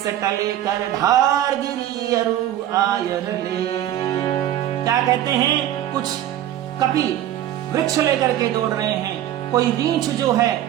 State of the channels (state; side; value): quieter; left; 12.2 dB